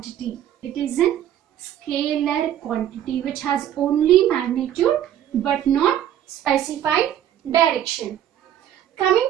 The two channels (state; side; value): quieter; left; 11.0 dB